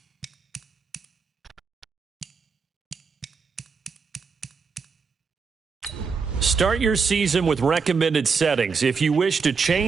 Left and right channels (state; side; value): quieter; left; 5.3 dB